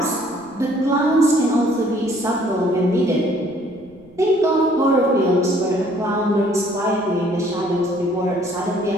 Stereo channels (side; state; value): right; noise; rumble, 28 dB below the sound